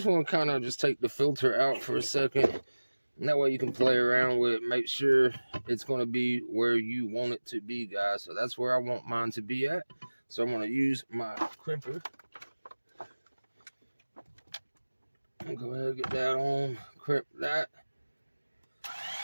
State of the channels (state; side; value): inverted; both; correlation -1.00